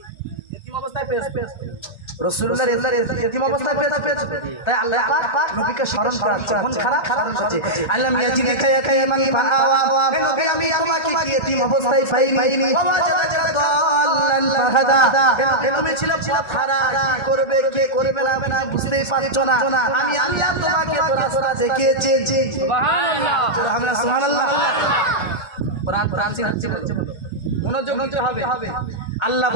এতিম অবস্থায় পেয়েছি। রাসূলুল্লাহ এতিম অবস্থায় পেয়েছে। তাই আল্লাহ পাক নবীকে স্মরণ করাচ্ছে, মন খারাপ হচ্ছে। আলাম ইয়াজিদিকা ইয়াতীমান ফাআওয়া। হে নবী আমি তোমাকে কি এতিম অবস্থায় পাইনি? তুমি ছিলে পথহারা, কি করবে কে করবে না বুঝতেই পারছো না। আমি আল্লাহ তোমাকে তো রাস্তা দেখিয়েছি। সুবহানাল্লাহ, সুবহানাল্লাহ। কোরআন শিখছে, মনোযোগ দিতে হবে। আল্লাহ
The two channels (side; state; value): right; late; 2.1 ms